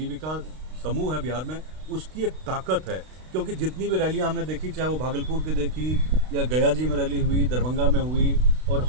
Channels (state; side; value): late; left; 32 ms